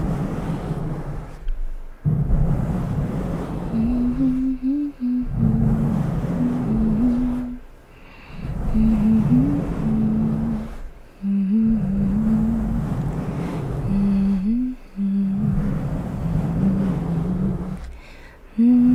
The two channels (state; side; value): identical; both; correlation 1.00